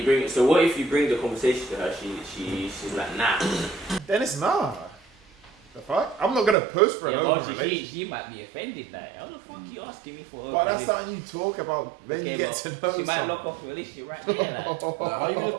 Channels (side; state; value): left; drops out; at 6.6 s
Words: bring it. So what if you bring the conversation to her? She's like, nah. Then it's nah. The fuck? I'm not gonna post for an open relationship. She might be offended. Like, how the fuck you asking me for? But that's something you talk about when you get to know She might someone. lock off the relationship right there. Like. Like, how you gonna